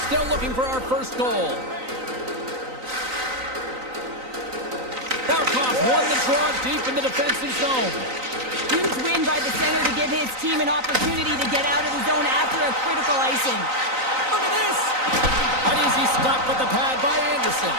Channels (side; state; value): left; late; 3.9 ms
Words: Still looking for our first goal. Barkov won the draw deep in the defensive zone. Huge win by the center to give his team an opportunity to get out of the zone after a critical icing. Look at this! An easy stop with the pad by Anderson.